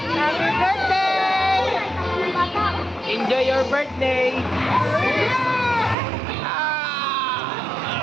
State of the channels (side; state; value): left; drops out; at 6.0 s